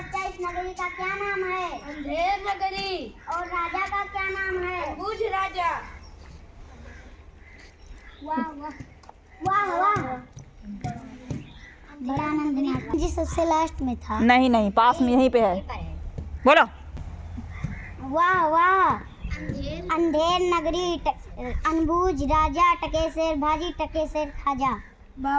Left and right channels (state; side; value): identical; both; correlation 1.00